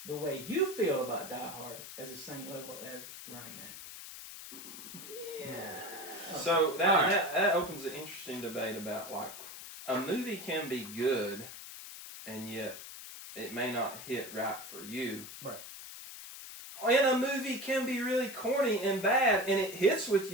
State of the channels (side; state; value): left; noise; hiss, 12 dB below the sound